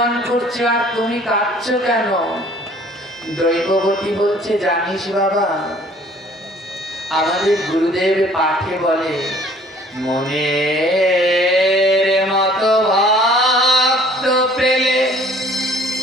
করছে, আর তুমি কাঁদছো কেন? দৈববতী বলছে, জানিস বাবা, আমাদের গুরুদেব পাঠে বলে, মনের মতো ভক্ত পেলে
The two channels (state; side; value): normal; both; correlation 0.55